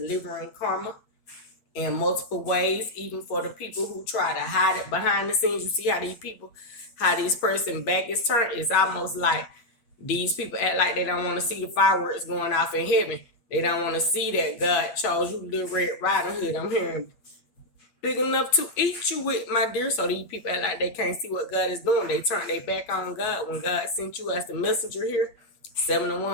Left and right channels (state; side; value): late; right; 8.5 ms